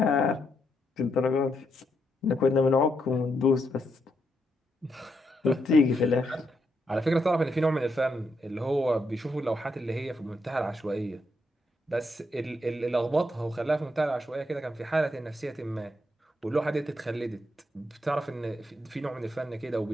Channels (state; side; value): normal; both; correlation 0.79